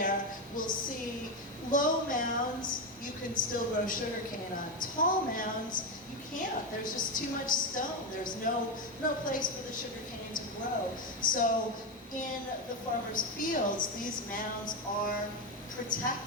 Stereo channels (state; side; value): normal; both; correlation 0.11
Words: we'll see low mounds. You can still grow sugar cane on. Tall mounds, you can't. There's just too much stone. There's no place for the sugar cane to grow. So in the farmers' fields, these mounds are